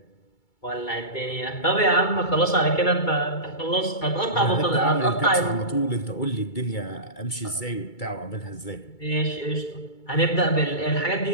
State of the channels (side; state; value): right; late; 2.3 ms